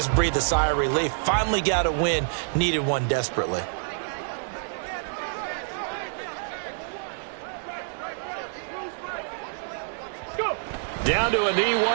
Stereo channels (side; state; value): left; silent; digital silence